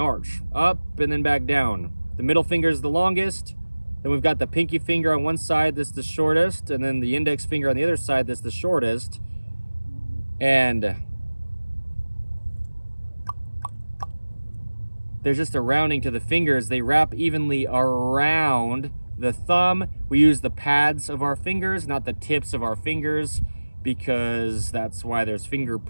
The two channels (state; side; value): inverted; both; correlation -1.00